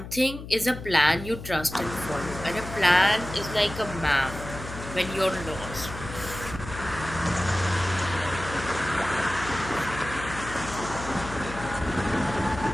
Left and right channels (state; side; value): noise; left; hum, 11 dB below the sound